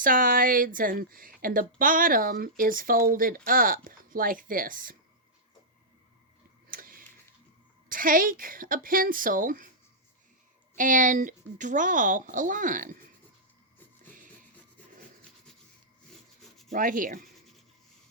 and the bottom is folded up like this. Take a pencil and draw a line right here.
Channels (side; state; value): both; normal; correlation -0.11